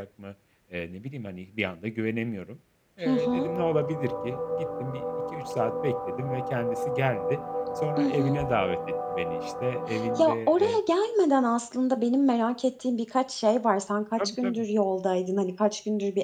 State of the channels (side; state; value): both; identical; correlation 1.00